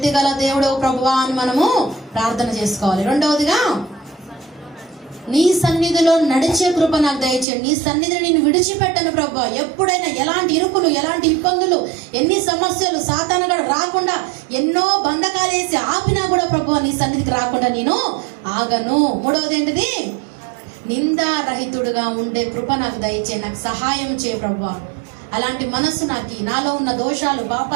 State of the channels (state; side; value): drops out; left; at 7.5 s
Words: గల దేవుడు ప్రభువా అని మనము ప్రార్థన చేసుకోవాలి. రెండవదిగా, నీ సన్నిధిలో నడిచే కృప నాకు దయచేయండి. నీ సన్నిధిని నేను విడిచిపెట్టను ప్రభువా. ఎప్పుడైనా ఎలాంటి ఇరుకులు, ఎలాంటి ఇబ్బందులు, ఎన్ని సమస్యలు సాతానుగాడు రాకుండా ఎన్నో బంధకాలు వేసి ఆపినా కూడా ప్రభువా నీ సన్నిధికి రాకుండా నేను ఆగను. మూడవది ఏంటిది, నిందారహితుడుగా ఉండే కృప నాకు దయచేయి, నాకు సహాయం చేయ ప్రభువా. అలాంటి మనసు నాలో ఉన్న దోషాలు,